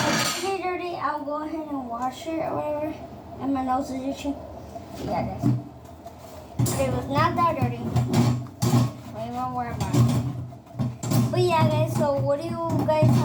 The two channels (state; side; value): identical; both; correlation 1.00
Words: dirty, I'll go ahead and wash it or whatever, and my nose is itchy. Yeah, guys. It was not that dirty. We won't worry about it. But yeah, guys, so what do you guys